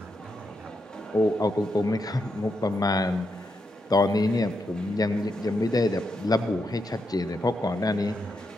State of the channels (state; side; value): normal; both; correlation 0.83